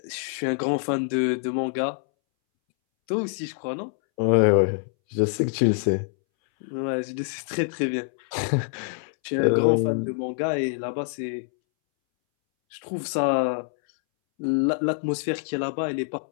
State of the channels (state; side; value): silent; right; 61 dB below the other